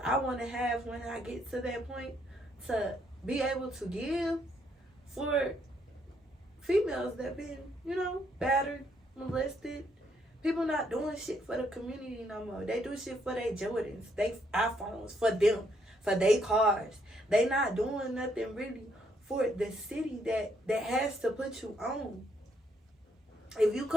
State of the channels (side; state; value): both; normal; correlation 0.72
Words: I want to have when I get to that point to be able to give for females that been, battered, molested. People not doing shit for the community no more. They do shit for their Jordans, they iPhones, for them, for their cars. They not doing nothing really for the city that has to put you on. If you